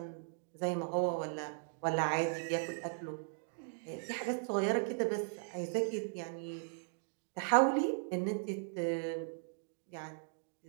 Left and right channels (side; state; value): left; silent; digital silence